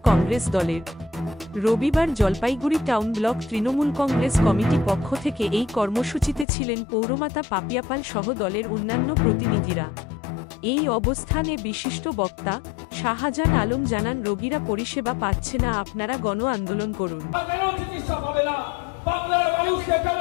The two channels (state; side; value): drops out; right; at 6.5 s